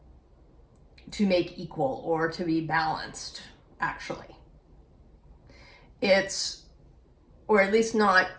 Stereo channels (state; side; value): identical; both; correlation 1.00